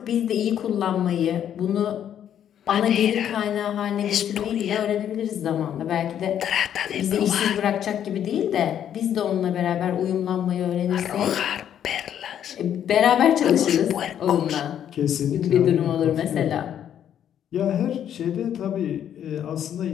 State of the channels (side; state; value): right; quieter; 9.8 dB